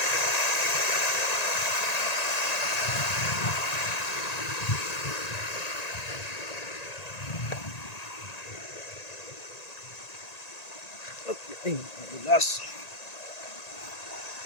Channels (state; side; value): late; right; 1.9 ms